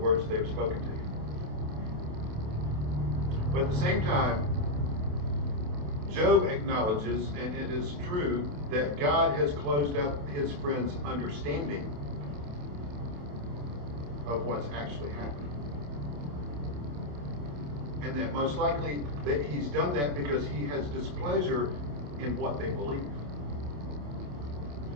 they've spoken to him. But at the same time, Job acknowledges, and it is true, that God has closed up his friends' understanding of what's actually happening. And that most likely that he's done that because he has displeasure in what they believe.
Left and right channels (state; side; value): late; left; 28 ms